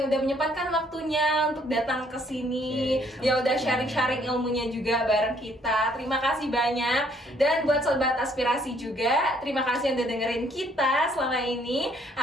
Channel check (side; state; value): both; normal; correlation 0.65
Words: udah menyempatkan waktunya untuk datang ke sini. Ya udah sharing-sharing ilmunya juga bareng kita. Terima kasih banyak. Dan buat sobat aspirasi juga, terima kasih yang udah dengerin kita selama ini.